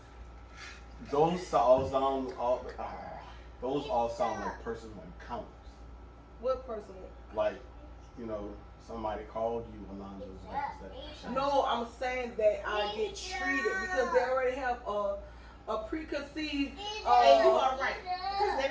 Those all sound like personal encounters. What person? Like, you know, somebody called you Alonzo's wife instead of No, I'm saying that I get treated because they already have a preconceived. And you are right. Because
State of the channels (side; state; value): both; identical; correlation 1.00